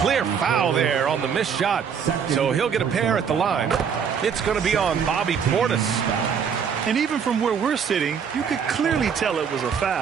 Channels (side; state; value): left; quieter; 7.1 dB